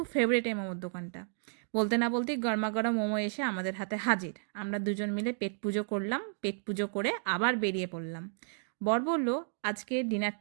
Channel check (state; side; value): silent; left; digital silence